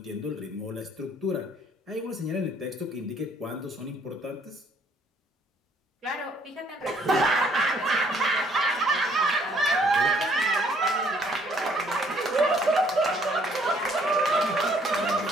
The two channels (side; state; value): both; normal; correlation 0.64